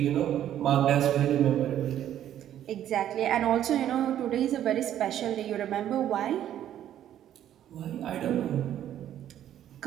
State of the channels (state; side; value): quieter; left; 11.2 dB